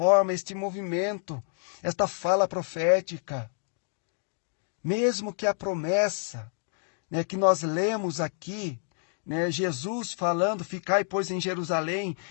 este movimento, esta fala profética. Mesmo que a promessa, né, que nós lemos aqui, né, Jesus falando, ficai, pois, em Jerusalém,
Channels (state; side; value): silent; right; 59 dB below the other